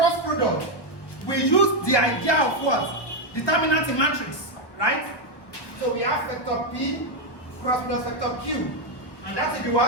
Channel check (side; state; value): right; late; 1.1 ms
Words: product, we use the idea of what? Determinant in matrix. Right? So we have vector P cross plus vector Q. And that will be